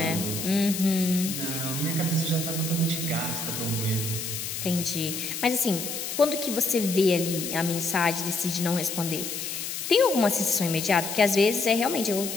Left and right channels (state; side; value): noise; left; hiss, 5 dB below the sound